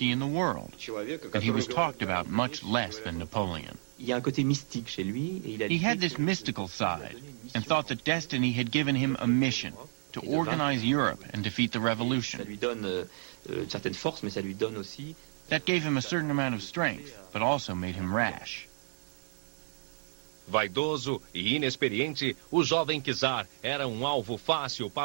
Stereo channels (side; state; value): left; silent; 57 dB below the other